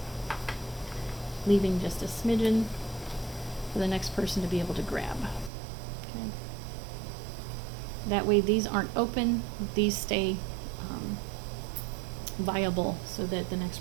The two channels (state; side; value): drops out; left; at 5.5 s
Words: leaving just a smidgen for the next person to be able to grab. Okay. That way these aren't open, these stay viable so that the